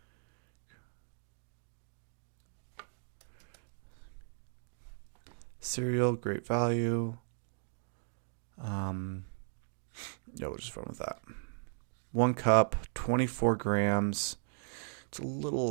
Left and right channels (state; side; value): silent; left; digital silence